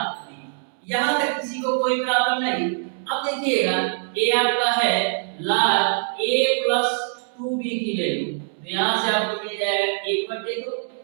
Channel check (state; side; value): silent; left; 63 dB below the other